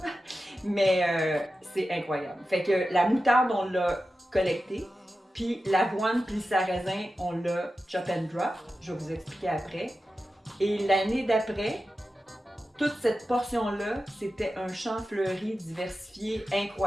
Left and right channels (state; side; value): normal; both; correlation 0.92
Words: mais c'est incroyable. Fait que la moutarde, on l'a collectée, puis l'avoine puis le sarrasin, on l'a chop and drop. Je vais vous expliquer après. Et l'année d'après, toute cette portion-là, c'était un champ fleuri diversifié